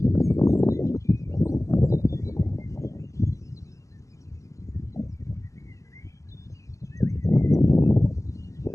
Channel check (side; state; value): right; late; 0.16 ms